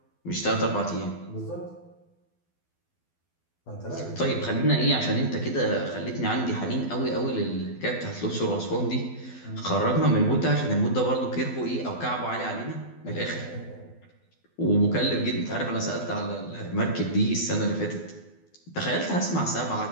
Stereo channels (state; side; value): late; right; 12 ms